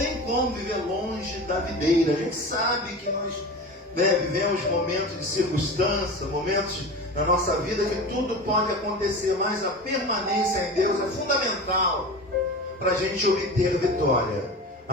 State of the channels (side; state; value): both; normal; correlation 0.31